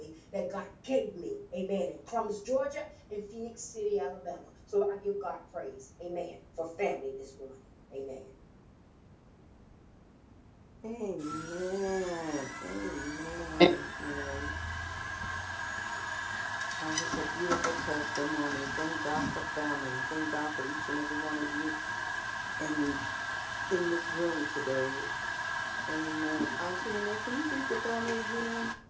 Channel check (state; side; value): identical; both; correlation 1.00